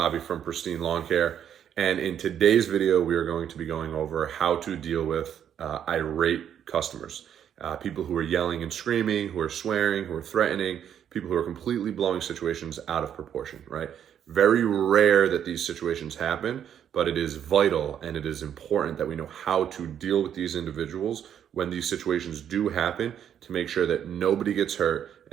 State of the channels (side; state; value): left; quieter; 9.3 dB